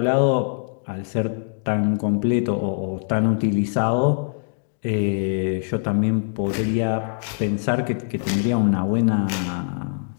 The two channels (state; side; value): silent; right; 64 dB below the other